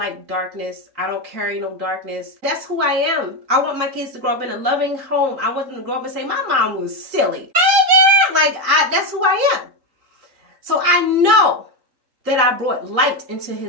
darkness. I don't carry no darkness. That's who I am. I want my kids to grow up in a loving home. I want them to grow up and say, my mom was silly. Like, that's who I am. So I know that I brought light into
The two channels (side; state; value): left; late; 3.8 ms